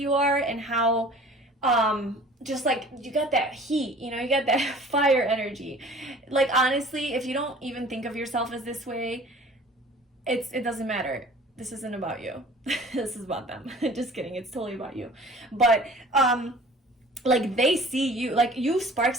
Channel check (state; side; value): normal; both; correlation 0.47